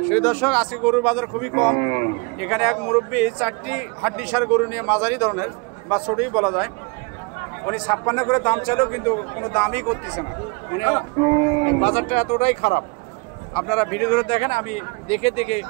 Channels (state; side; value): quieter; left; 30.5 dB